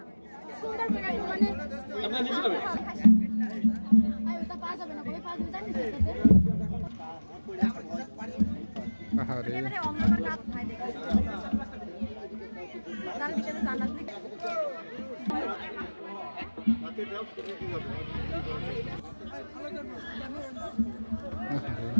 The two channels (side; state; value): both; inverted; correlation -1.00